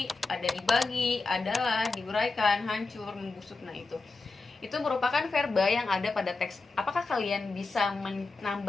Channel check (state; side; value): quieter; right; 3.8 dB